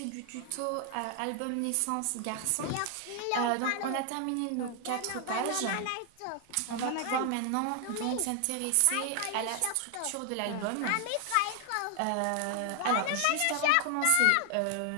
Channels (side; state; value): both; different; correlation 0.00